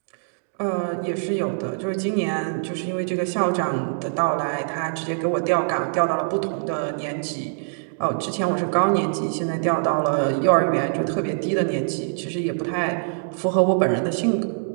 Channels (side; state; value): left; silent; digital silence